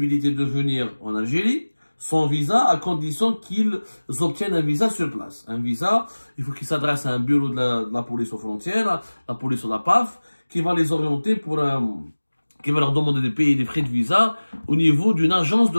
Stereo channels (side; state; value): both; inverted; correlation -1.00